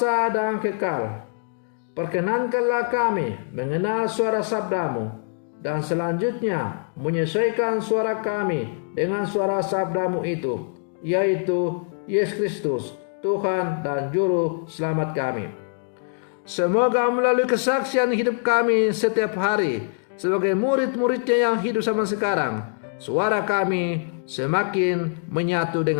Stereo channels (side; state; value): right; silent; digital silence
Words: dan Kekal, perkenankanlah kami mengenal suara sabdamu dan selanjutnya menyesuaikan suara kami dengan suara sabdamu itu, yaitu Yesus Kristus, Tuhan dan Juru Selamat kami. Semoga melalui kesaksian hidup kami setiap hari sebagai murid-muridnya yang hidup zaman sekarang, suara kami semakin menyatu